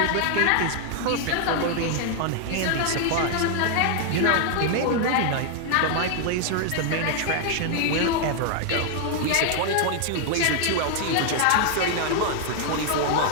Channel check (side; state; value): both; different; correlation 0.00